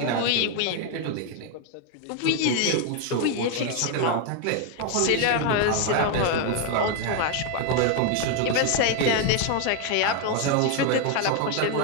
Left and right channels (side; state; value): both; different; correlation 0.01